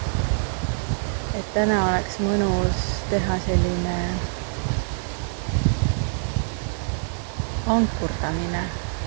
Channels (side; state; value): left; silent; digital silence